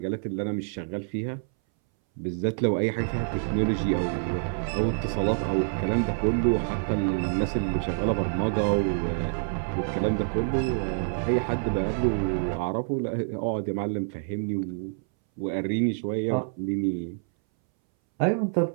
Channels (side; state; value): left; silent; 60 dB below the other